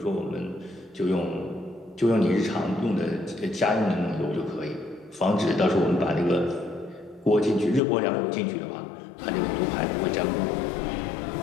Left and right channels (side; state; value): right; drops out; at 7.8 s